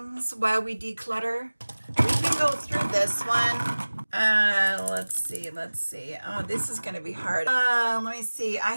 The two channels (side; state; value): both; inverted; correlation -1.00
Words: while we declutter. We can go through this one. Let's see. Oh, this is going to be hard. Let me see. I